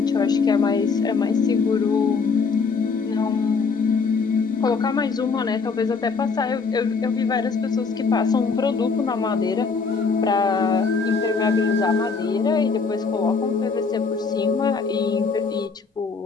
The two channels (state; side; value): quieter; right; 4.9 dB